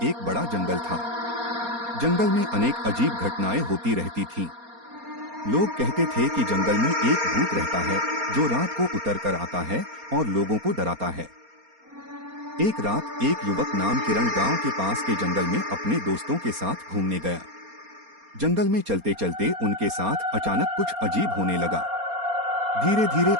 एक बड़ा जंगल था। जंगल में अनेक अजीब घटनाएं होती रहती थीं। लोग कहते थे कि जंगल में एक भूत रहता है जो रात को उतर कर आता है और लोगों को डराता है। एक रात एक युवक नाम किरण गांव के पास के जंगल में अपने दोस्तों के साथ घूमने गया। जंगल में चलते चलते उनके साथ अचानक कुछ अजीब होने लगा। धीरे धीरे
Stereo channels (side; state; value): left; late; 4.3 ms